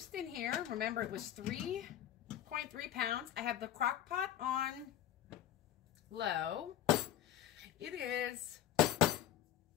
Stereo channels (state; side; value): quieter; right; 11.8 dB